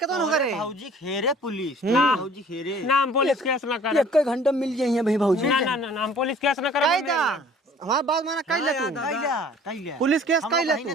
हो करे भाऊजी खेरे पुलिस ना भाऊजी खेरे ना हम पुलिस केस ना कर। एक घंटा मिल जाइए भाई भाऊजी। ना ना ना हम पुलिस केस ना करवाऊ। हमारा बात माना कैला तू कैला पुलिस केस कैला ना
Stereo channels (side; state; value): both; normal; correlation 0.51